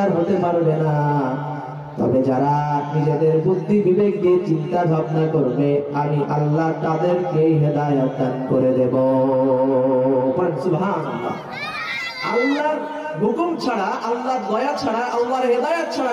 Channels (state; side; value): identical; both; correlation 1.00